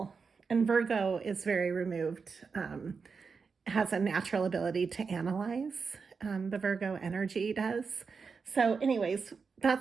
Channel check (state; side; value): quieter; left; 5.2 dB